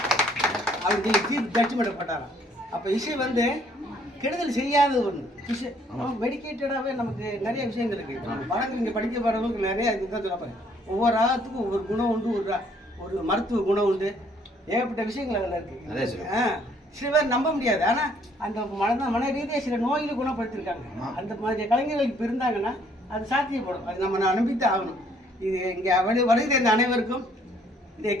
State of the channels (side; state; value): both; normal; correlation 0.64